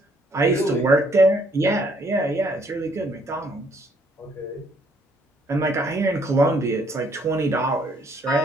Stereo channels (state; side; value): normal; both; correlation 0.66